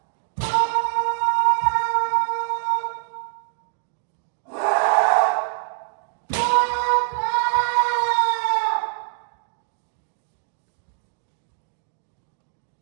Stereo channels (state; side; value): silent; left; digital silence